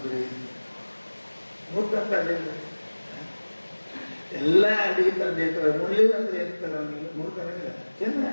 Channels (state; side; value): inverted; both; correlation -1.00